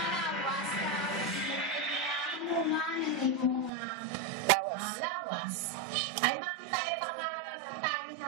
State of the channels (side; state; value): left; drops out; at 3.7 s